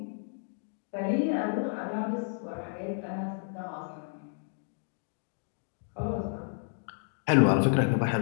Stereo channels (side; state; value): right; silent; digital silence